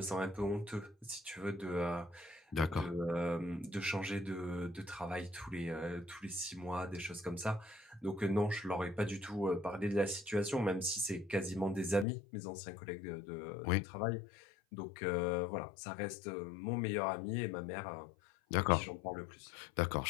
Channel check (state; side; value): drops out; right; at 12.1 s